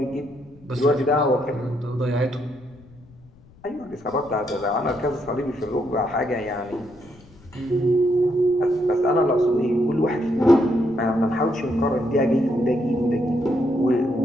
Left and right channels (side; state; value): left; noise; rumble, 25 dB below the sound